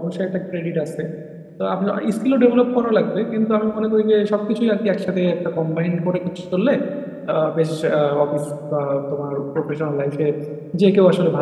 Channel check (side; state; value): both; identical; correlation 1.00